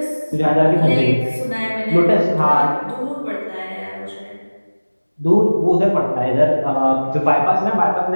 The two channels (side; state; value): both; inverted; correlation -1.00